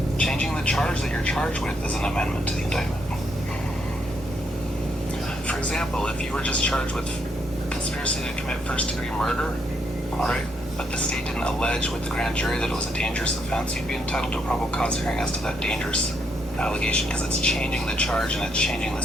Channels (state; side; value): normal; both; correlation 0.76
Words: Changing the charge that you're charged with is an amendment to the indictment. For example, if you were just charged with conspiracy to commit first-degree murder, all right, but the state didn't allege with the grand jury that it was a dangerous offense, you'd be entitled to a probable cause hearing as to that dangerous allegation because it's changing the charge and it's changing the